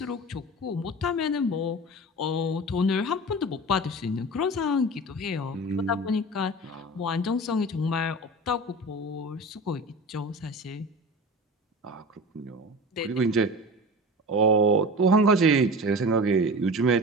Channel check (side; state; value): both; normal; correlation 0.33